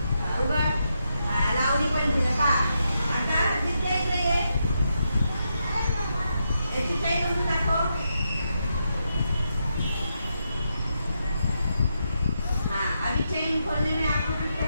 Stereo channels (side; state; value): both; inverted; correlation -0.83